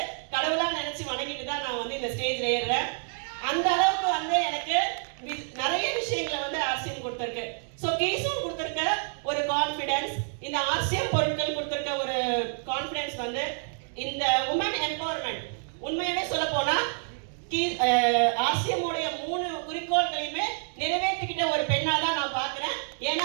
கடவுளாக நினைச்சு வணங்கிட்டு தான் நான் வந்து இந்த ஸ்டேஜ்ல ஏறுறேன். அந்த அளவுக்கு வந்து எனக்கு நிறைய விஷயங்களை வந்து ஆர்சிஎம் கொடுத்துருக்கு. ஸோ கீசோன் கொடுத்துருக்க ஒரு கான்ஃபிடன்ஸ், இந்த ஆர்சிஎம் பொருட்கள் கொடுத்துருக்க ஒரு கான்ஃபிடன்ஸ் வந்து இந்த உமன் எம்பவர்மெண்ட். உண்மையாவே சொல்ல போனா ஆர்சிஎம் உடைய 3 குறிக்கோள்களையுமே நிறைவேற்றிக்கிட்ட ஒரு பெண்ணா தான் நான் பார்க்கிறேன். ஏன்னா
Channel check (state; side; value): silent; left; 59 dB below the other